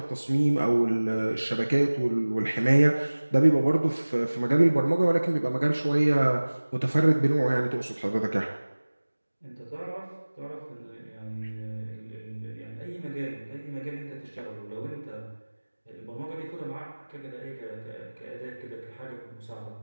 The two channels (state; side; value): inverted; both; correlation -1.00